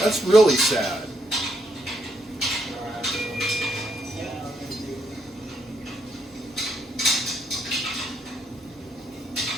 That's really sad.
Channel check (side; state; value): both; normal; correlation 0.76